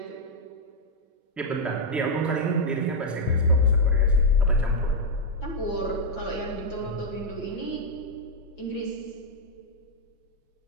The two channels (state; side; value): normal; both; correlation -0.03